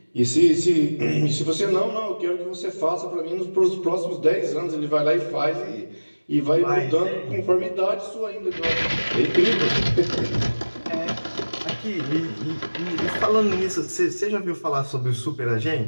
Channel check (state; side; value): inverted; both; correlation -1.00